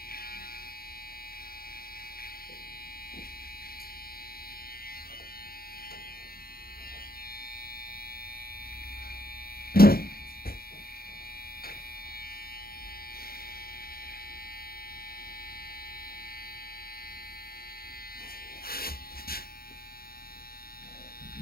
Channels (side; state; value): right; late; 0.44 ms